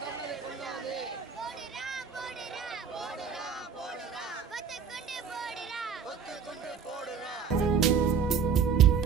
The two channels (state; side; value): quieter; left; 6.4 dB